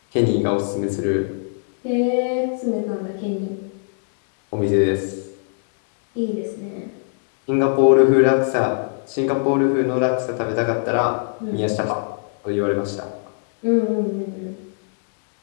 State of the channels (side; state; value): right; silent; digital silence